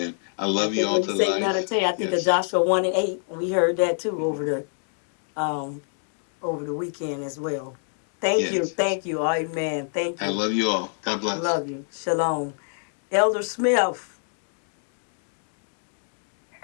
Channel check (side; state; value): right; silent; digital silence